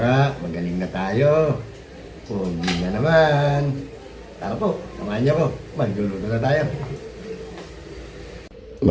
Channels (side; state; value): both; identical; correlation 1.00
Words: Magaling na tayo. Pogi na naman. Tara po, samahan nyo ko, magluluto na tayo.